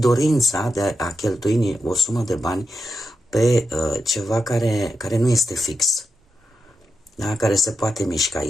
de a cheltui o sumă de bani pe ceva care nu este fix, da? Care se poate mișca,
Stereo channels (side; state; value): both; normal; correlation 0.87